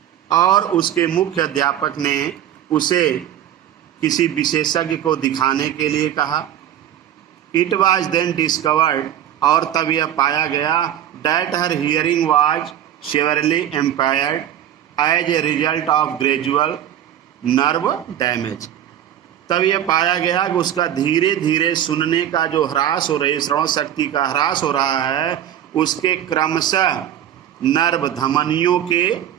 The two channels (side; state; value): left; quieter; 10.9 dB